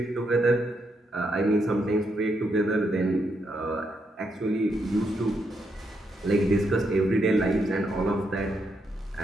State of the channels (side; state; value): both; normal; correlation 0.80